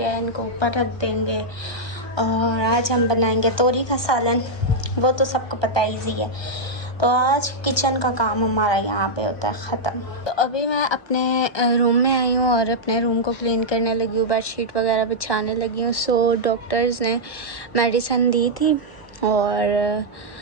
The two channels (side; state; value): right; late; 1.2 ms